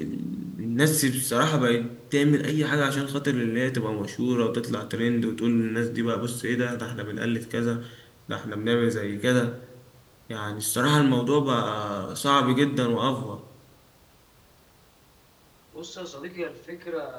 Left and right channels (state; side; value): identical; both; correlation 1.00